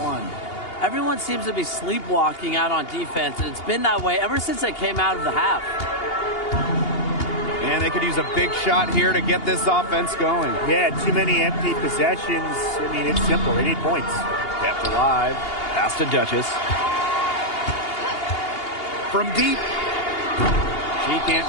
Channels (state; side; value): late; right; 2.8 ms